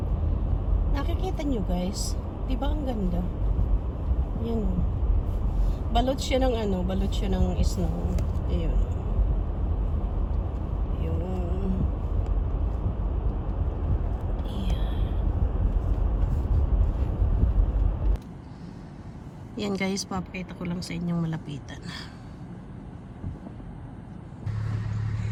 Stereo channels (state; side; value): identical; both; correlation 1.00